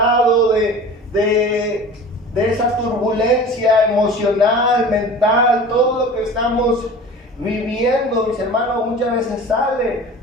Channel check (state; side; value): normal; both; correlation 0.39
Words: de esa turbulencia emocional, mental, todo lo que estamos viviendo, mis hermanos, muchas veces sale